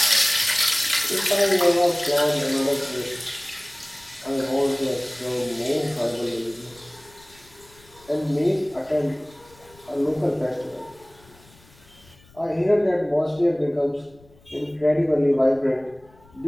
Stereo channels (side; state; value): left; noise; rumble, 27 dB below the sound